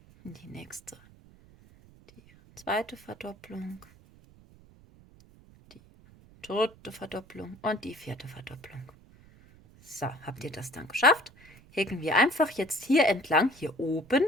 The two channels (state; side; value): noise; right; rumble, 25 dB below the sound